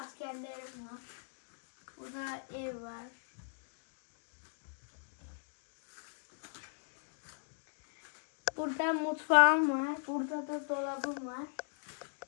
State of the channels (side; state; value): right; silent; digital silence